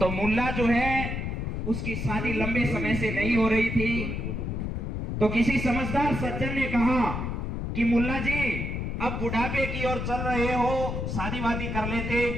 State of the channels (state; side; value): noise; left; rumble, 3 dB below the sound